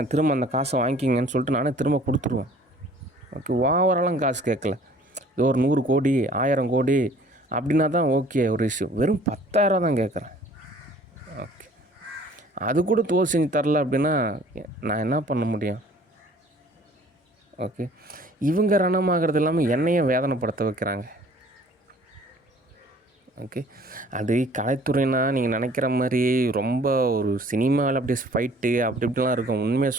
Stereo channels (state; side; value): normal; both; correlation 0.53